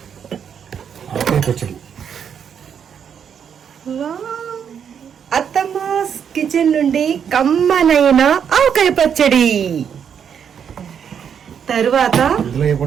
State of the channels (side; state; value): left; quieter; 7.8 dB